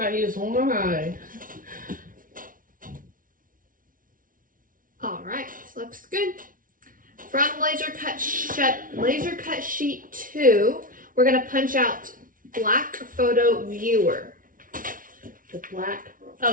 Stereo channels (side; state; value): left; late; 0.39 ms